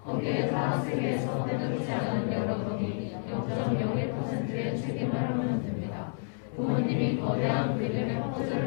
거기에 타락세계에서 때묻지 않은 여러분이 0.01%의 책임을 하면 됩니다. 부모님이 거대한 그림의 퍼즐을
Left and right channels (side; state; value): right; silent; digital silence